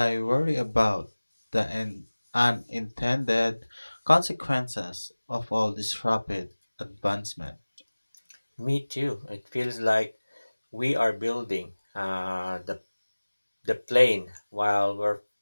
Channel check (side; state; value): both; inverted; correlation -1.00